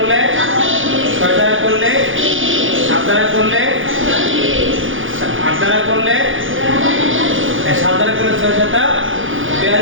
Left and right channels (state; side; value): late; left; 0.58 ms